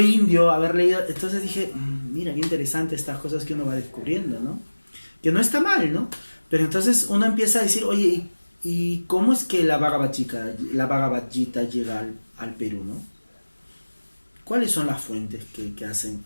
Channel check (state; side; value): inverted; both; correlation -1.00